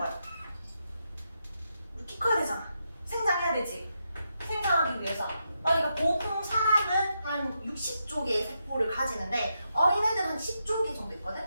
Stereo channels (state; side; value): inverted; both; correlation -0.84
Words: 우리 키 커야 되잖아. 생장해야 되지. 생장하기 위해서. 그러니까 보통 사람은 한 60조 개의 세포를 가지는데 어린애들은 한 10조 개 정도 있거든?